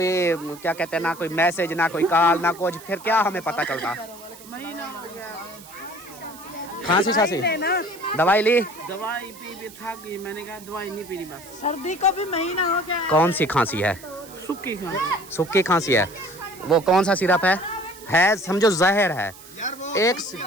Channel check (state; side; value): noise; right; hiss, 19 dB below the sound